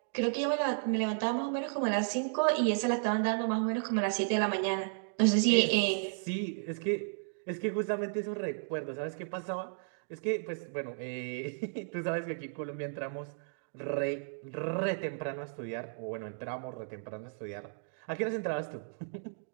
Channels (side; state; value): left; silent; digital silence